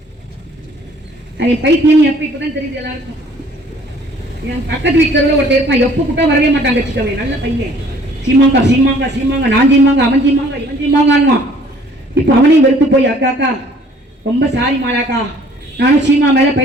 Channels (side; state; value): both; normal; correlation 0.56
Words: பைத்தியம் எப்ப இப்பதான் தெரியுது எல்லாருக்கும். என் பக்கத்து வீட்டுல ஒருத்தர் இருப்பான், எப்ப கூட்டம் வரவே மாட்டாங்க வச்சுக்கவே, நல்ல பையன். சீமாங்கா சீமாங்கா சீமாங்க, நான் சீமாங்க அவன் சீமாங்க இவன் சீமாங்கான்வான். இப்ப அவனையும் வெறுத்து போய் அக்காக்கா ரொம்ப சாரி மாலாக்கா, நானும் சீமா மேல